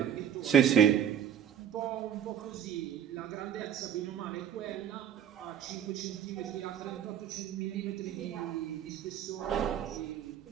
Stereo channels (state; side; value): quieter; left; 9.3 dB